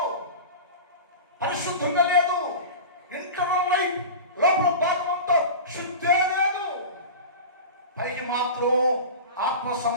పరిశుద్ధంగా లేదు. ఇంటర్నల్ లైఫ్ లోపల భాగంతో శుద్ధే లేదు. పైకి మాత్రం ఆత్మ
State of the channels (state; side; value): inverted; both; correlation -0.30